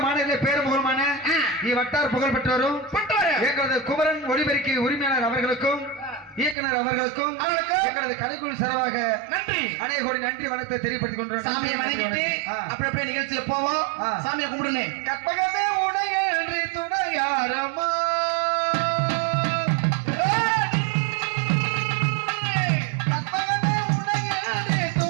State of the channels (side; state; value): left; drops out; at 6.6 s